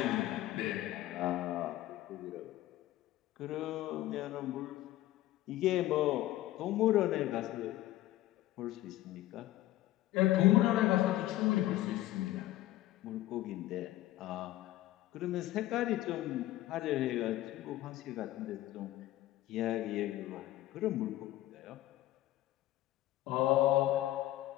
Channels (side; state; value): right; quieter; 15.4 dB